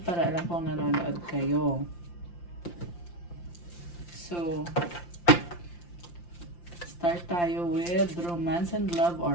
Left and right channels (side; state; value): right; late; 5.8 ms